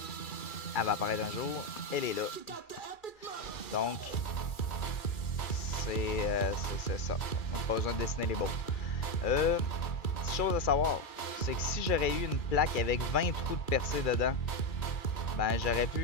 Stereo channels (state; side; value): late; right; 2.3 ms